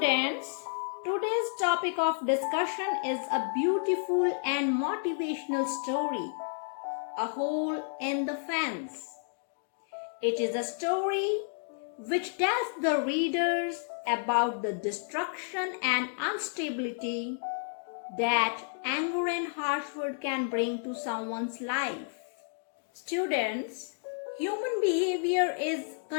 today's topic of discussion is a beautiful and motivational story, A Hole in the Fence. It is a story which tells the readers about the destruction and instability that anger and harsh word can bring to someone's life. Students, human behavior is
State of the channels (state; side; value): silent; right; digital silence